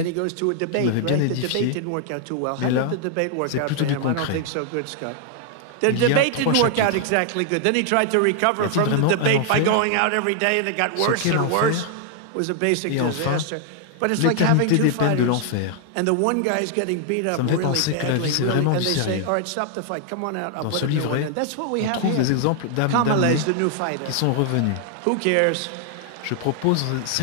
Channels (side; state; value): both; different; correlation 0.00